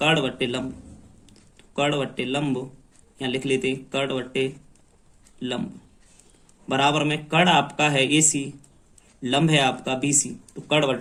बट्टे लंब, कड़ बट्टे लंब यहाँ लिख लेते हैं कड़ बट्टे लंब, बराबर में कड़ आपका है एसी, लंब है आपका बीसी, तो कड़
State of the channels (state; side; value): identical; both; correlation 1.00